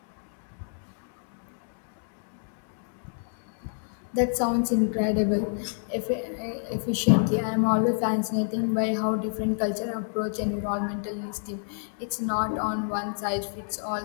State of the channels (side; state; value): right; silent; digital silence